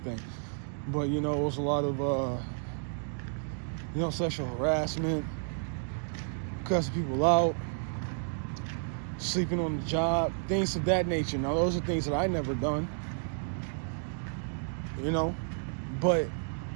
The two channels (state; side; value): silent; left; digital silence